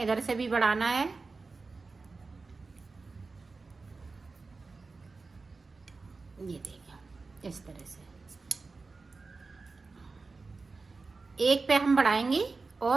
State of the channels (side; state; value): left; quieter; 4.0 dB